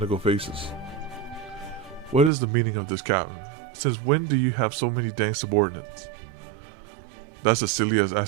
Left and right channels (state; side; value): drops out; left; at 2.3 s